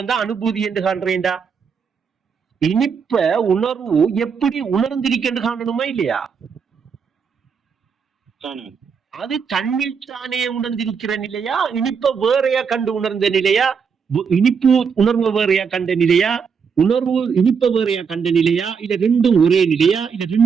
தான் அனுபூதி என்று காண்றேன்டா. இனிப்ப உணர்வு எப்படி உணர்ந்திருக்கென்று காணணுமா இல்லையா? அது தன்னில் தானே உணர்ந்திருக்கிற நிலையா, இனிப்ப வேறையா கண்டு உணர்ந்த நிலையா, இனிப்பு உணர்வு வேறையா கண்ட நிலையா, உணர்வு இனிப்ப வேறையா கண்ட நிலையா, இல்ல ரெண்டும் ஒரே நிலையா, இல்ல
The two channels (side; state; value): left; quieter; 6.2 dB